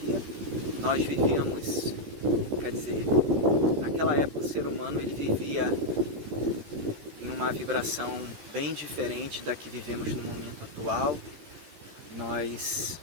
Nós vivíamos, naquela época o ser humano ele vivia em uma vibração bem diferente da que vivemos no momento atual. Nós,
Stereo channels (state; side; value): late; left; 14 ms